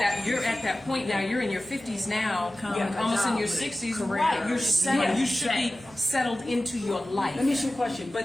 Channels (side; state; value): right; noise; hum, 24 dB below the sound